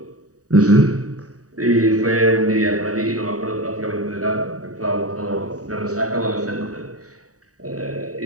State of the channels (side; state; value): left; late; 0.66 ms